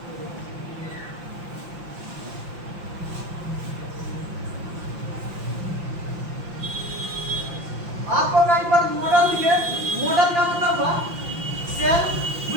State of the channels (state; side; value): late; left; 5.8 ms